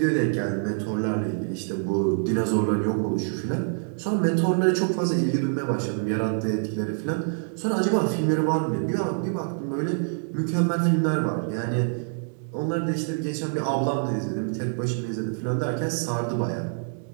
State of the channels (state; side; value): silent; left; 61 dB below the other